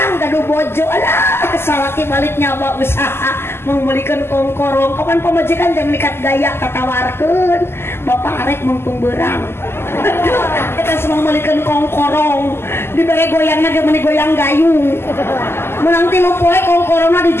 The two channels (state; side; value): late; right; 0.12 ms